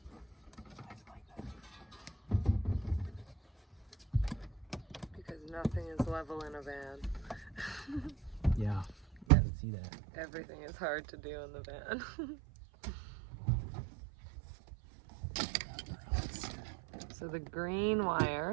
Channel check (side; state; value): left; drops out; at 9.2 s